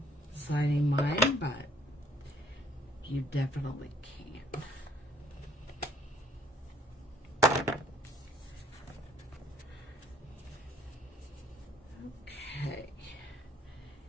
signing mine, but you definitely can. Okay,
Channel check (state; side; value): normal; both; correlation 0.62